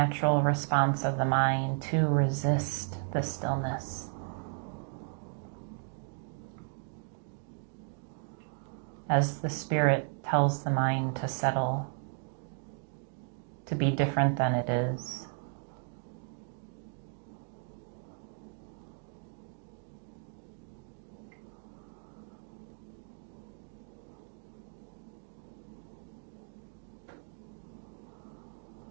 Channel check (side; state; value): left; silent; 55 dB below the other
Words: response of the mind to resist the stillness. As the spirit tells the mind to settle, to be different than it is.